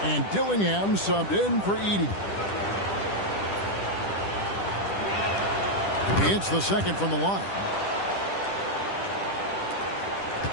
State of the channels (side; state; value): right; late; 10 ms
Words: And Dillingham subbed in for Edey. He hits the second from the line.